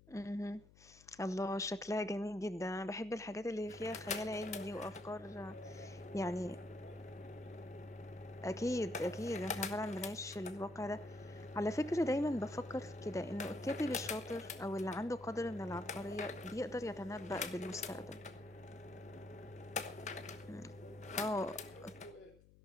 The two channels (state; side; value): noise; left; hum, 24 dB below the sound